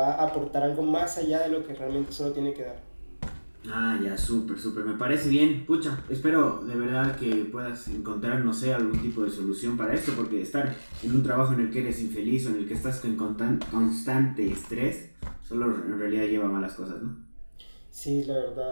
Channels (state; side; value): inverted; both; correlation -1.00